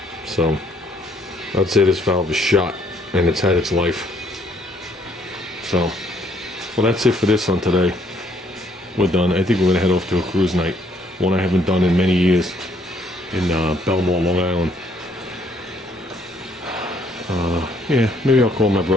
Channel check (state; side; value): normal; both; correlation 0.66